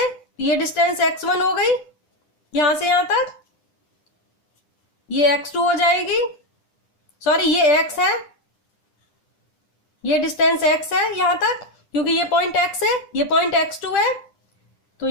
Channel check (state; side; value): late; right; 9.9 ms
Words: ये डिस्टेंस x1 हो गई यहां से यहां तक. ये x2 हो जाएगी, सॉरी ये x है, ये डिस्टेंस x है यहां तक क्योंकि ये पॉइंट x है, ये पॉइंट x2 है. तो